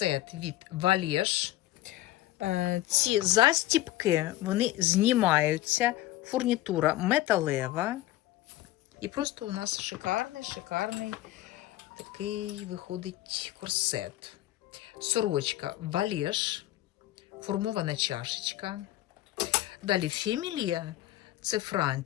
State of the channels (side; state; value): right; quieter; 15.6 dB